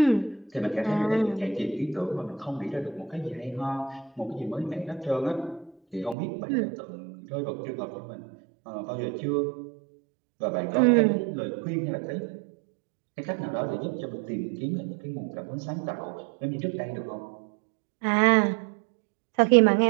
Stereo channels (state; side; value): drops out; left; at 6.2 s